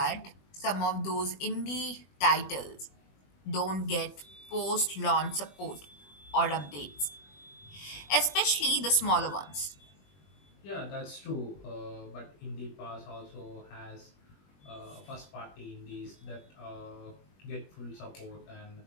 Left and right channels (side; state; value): right; late; 21 ms